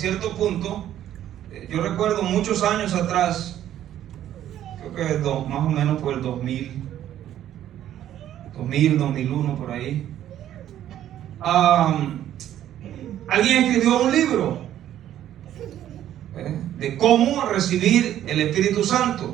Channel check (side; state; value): left; quieter; 11.6 dB